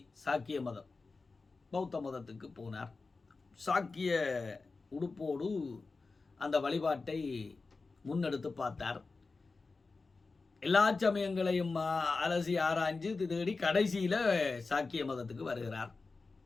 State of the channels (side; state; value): right; quieter; 4.0 dB